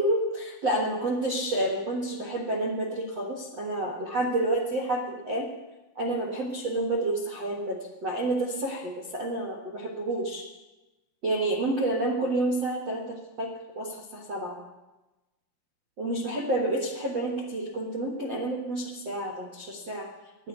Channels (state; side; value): late; left; 5.7 ms